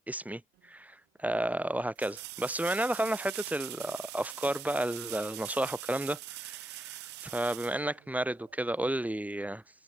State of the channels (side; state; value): both; normal; correlation 0.83